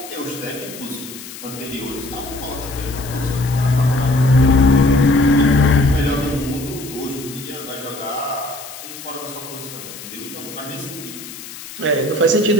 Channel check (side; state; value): left; noise; hiss, 13 dB below the sound